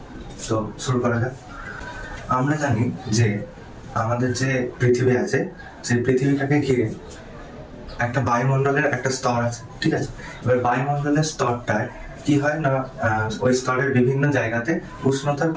তো শুরু করা যাক। আমরা জানি যে আমাদের যে পৃথিবী আছে, সেই পৃথিবীটাকে ঘিরে একটা বায়ুমণ্ডলের একটা স্তর আছে, ঠিক আছে। এবার বায়ুমণ্ডলের স্তরটায় কি হয় না, ওই স্তরের বিভিন্ন জায়গাতে উষ্ণতার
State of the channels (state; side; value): identical; both; correlation 1.00